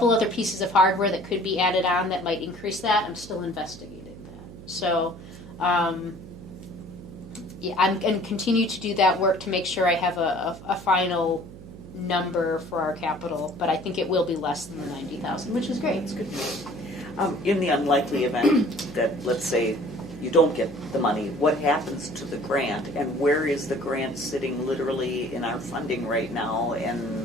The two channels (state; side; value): noise; right; hum, 16 dB below the sound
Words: other pieces of hardware that could be added on that might increase that. I'm still investigating that. So, yeah, I'm going to continue to do that work to make sure I have a final number for our capital, but I think it will be less than the 90,000, which is great. That's good news. In the unlikely event that, let's say, you don't get the money, what happens to the grant, and where is the grant sitting literally in our funding right now,